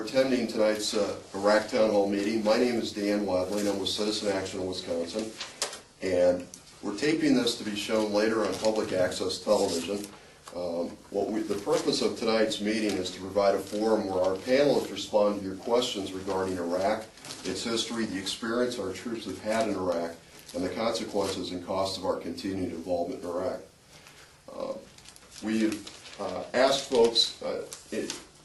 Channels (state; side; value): identical; both; correlation 1.00